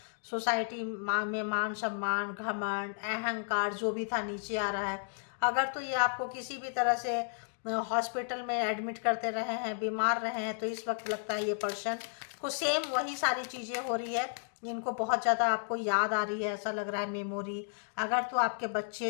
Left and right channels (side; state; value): right; silent; digital silence